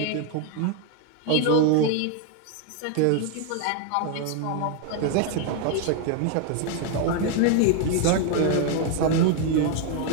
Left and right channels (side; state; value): both; different; correlation 0.01